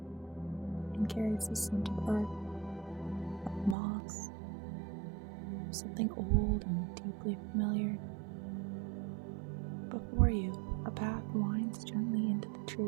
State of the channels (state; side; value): drops out; left; at 3.8 s